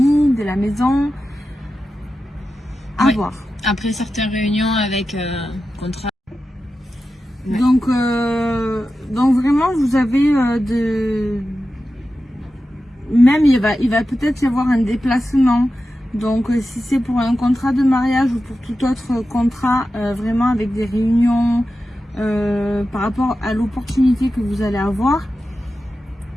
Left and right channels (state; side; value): normal; both; correlation 0.92